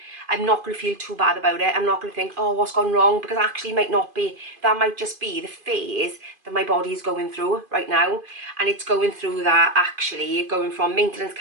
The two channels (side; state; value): left; late; 2.5 ms